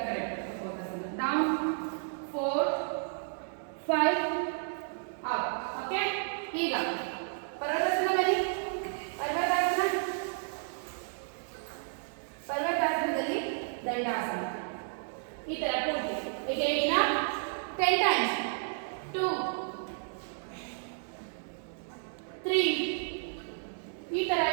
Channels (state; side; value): silent; left; digital silence